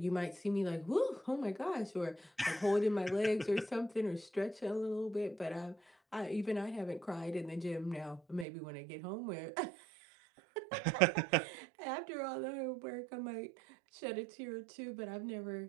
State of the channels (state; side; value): drops out; left; at 8.5 s